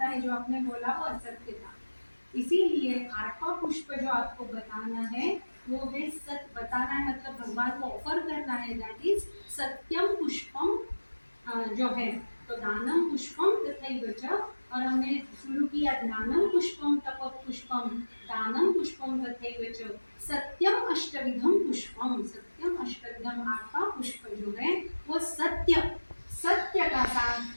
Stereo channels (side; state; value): both; inverted; correlation -1.00